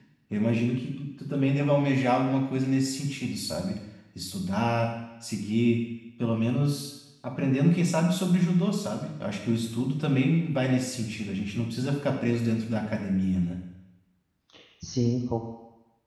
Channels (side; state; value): both; identical; correlation 1.00